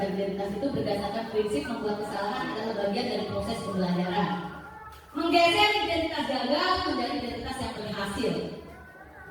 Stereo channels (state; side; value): identical; both; correlation 1.00